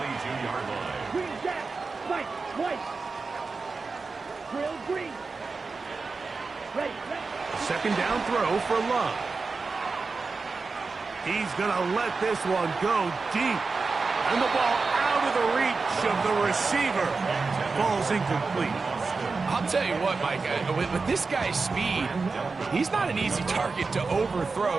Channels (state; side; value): quieter; left; 4.3 dB